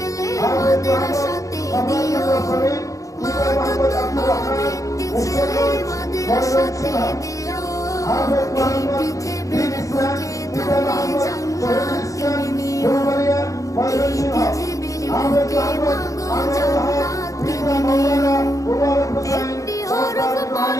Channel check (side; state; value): right; late; 0.16 ms